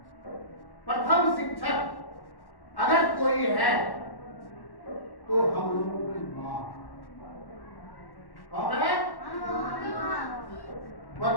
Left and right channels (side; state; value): right; late; 1.1 ms